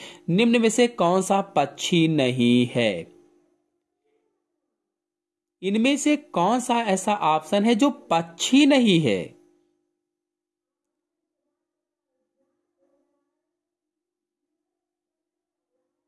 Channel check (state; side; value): identical; both; correlation 1.00